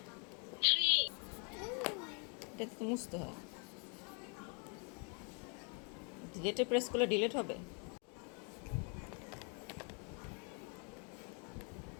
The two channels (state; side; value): quieter; right; 36.4 dB